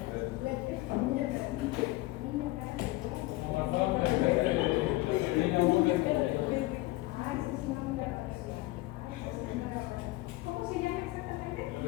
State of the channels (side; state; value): right; quieter; 19.7 dB